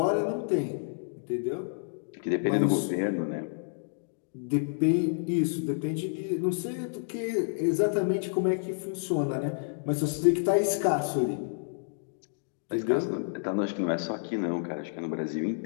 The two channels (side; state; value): right; silent; digital silence